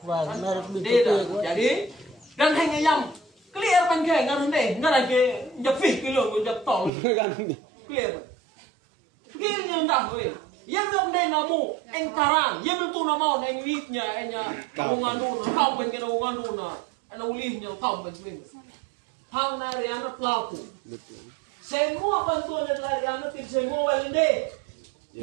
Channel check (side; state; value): left; drops out; at 6.9 s